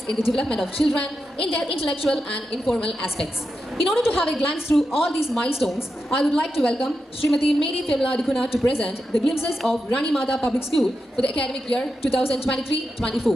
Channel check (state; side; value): normal; both; correlation 0.88